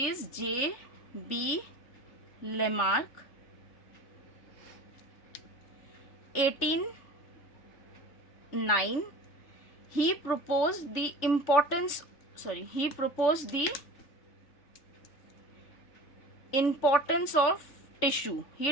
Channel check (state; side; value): late; right; 3.5 ms